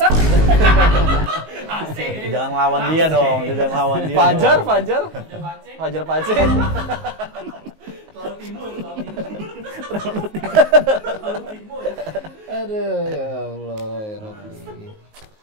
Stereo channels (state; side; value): late; left; 19 ms